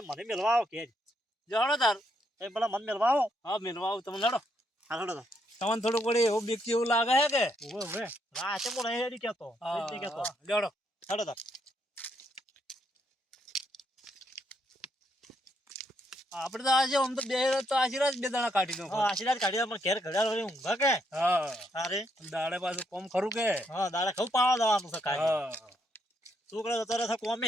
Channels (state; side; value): normal; both; correlation 0.75